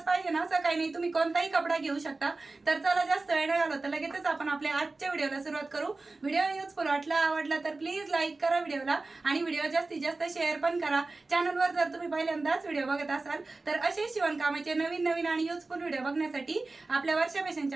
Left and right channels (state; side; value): quieter; left; 3.4 dB